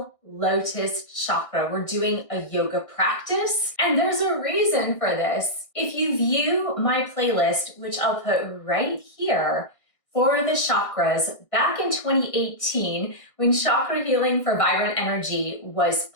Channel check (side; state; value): right; late; 1.6 ms